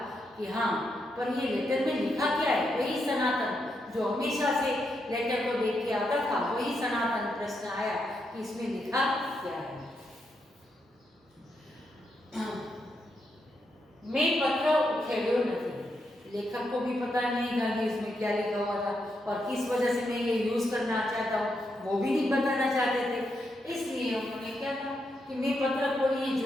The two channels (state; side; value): normal; both; correlation 0.82